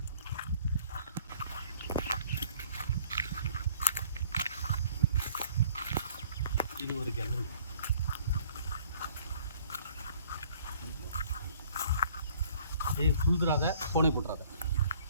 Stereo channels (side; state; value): both; inverted; correlation -0.56